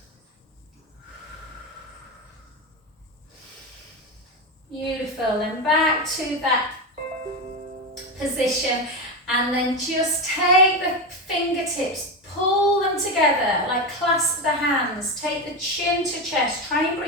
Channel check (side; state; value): both; normal; correlation 0.15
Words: Beautiful, then back to that position, and then just take the fingertips, pull them together, like clasp the hands, take the chin to chest, try and